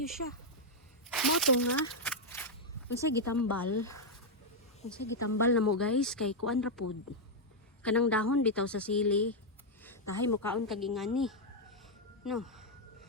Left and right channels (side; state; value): both; normal; correlation -0.01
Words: siya. Mao to nga. Unsay gitambal. Unsay gitambal na mo guys kay kuan ra pud. Kanang dahon bitaw sa sili. Tahay mo kaon kag ingani. No.